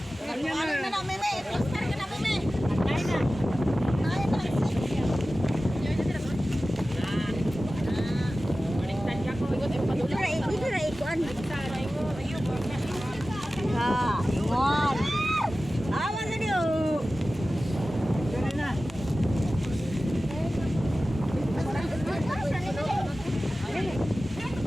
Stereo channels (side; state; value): both; normal; correlation 0.95